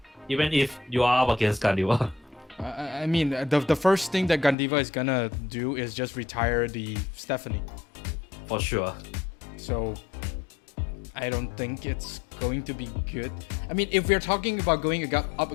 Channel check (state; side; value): drops out; right; at 4.5 s